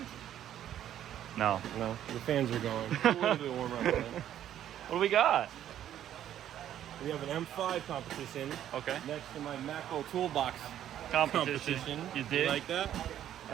No. No, the fans are going. It's a little bit warmer outside. What do we got? We have an M5 competition. Okay. Next to my Macro Toolbox Competition. You did? You like that?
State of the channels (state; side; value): quieter; left; 11.1 dB